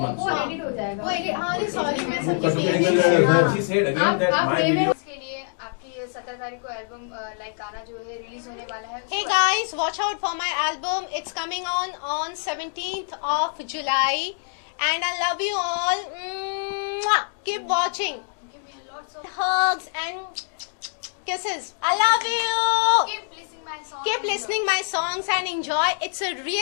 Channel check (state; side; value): silent; right; 62 dB below the other